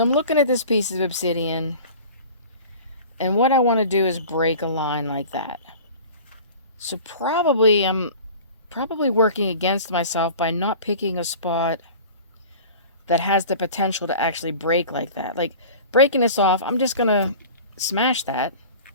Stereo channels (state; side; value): inverted; both; correlation -0.39